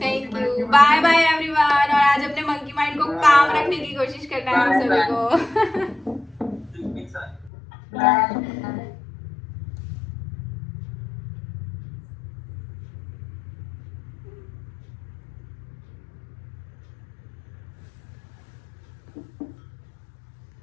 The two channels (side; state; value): right; drops out; at 7.5 s